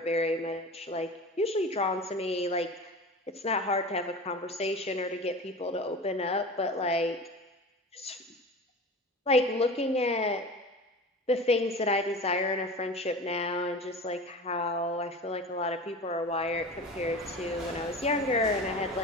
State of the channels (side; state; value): both; normal; correlation 0.34